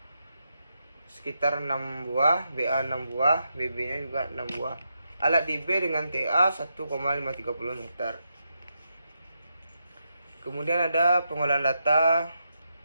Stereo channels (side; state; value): both; inverted; correlation -0.84